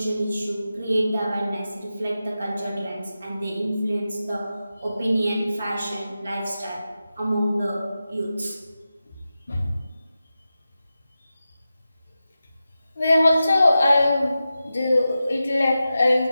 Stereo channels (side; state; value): both; inverted; correlation -0.92